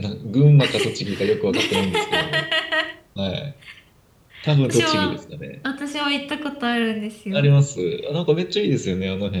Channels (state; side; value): identical; both; correlation 1.00